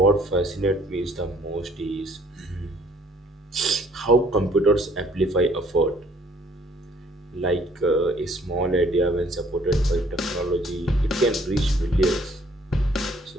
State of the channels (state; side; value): normal; both; correlation 0.60